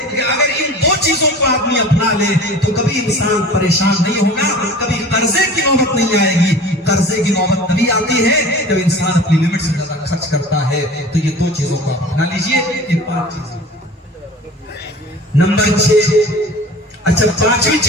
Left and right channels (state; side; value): normal; both; correlation 0.40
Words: کہ اگر ان 2 چیزوں کو آدمی اپنا لے تو کبھی انسان پریشان نہیں ہوگا، کبھی قرضے کی نوبت نہیں آئے گی۔ قرضے کی نوبت تبھی آتی ہے جب انسان اپنی لمٹ سے زیادہ خرچ کرتا ہے۔ تو یہ 2 چیزوں کو اپنا لیجیے، یہ 5 چیزیں۔ نمبر 6، اچھا 5ویں